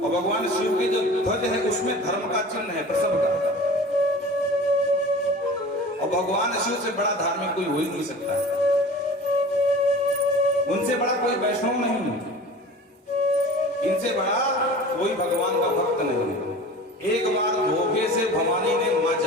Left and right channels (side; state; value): both; normal; correlation 0.39